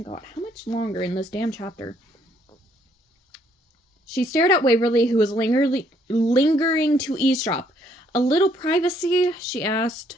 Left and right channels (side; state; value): both; normal; correlation 0.67